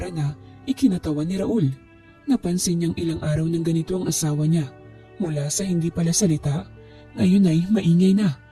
na ikinatawa ni Raul. Napansin niyang ilang araw ng ganito ang asawa niya. Mula sa hindi pala salita, ngayon ay maingay na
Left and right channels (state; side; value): identical; both; correlation 1.00